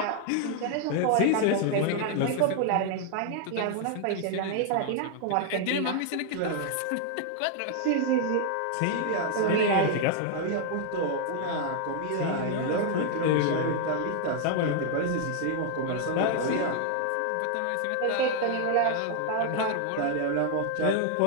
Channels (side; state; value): both; different; correlation 0.00